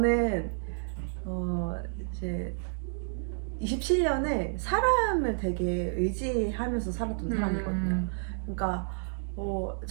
이제 27년을 사람을 되게 의지하면서 살았던 사람이거든요. 그러니까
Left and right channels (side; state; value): left; silent; digital silence